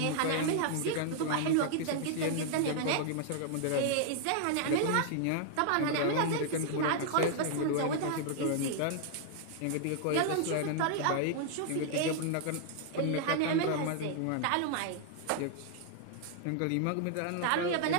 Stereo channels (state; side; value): different; both; correlation 0.00